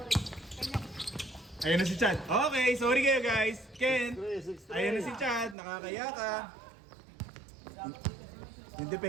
Ayun na si Chad. Okay, sorry kayo guys. Ken, 6-3. ayun na si Chad. Nakakaya ka. Yung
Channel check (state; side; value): drops out; left; at 5.6 s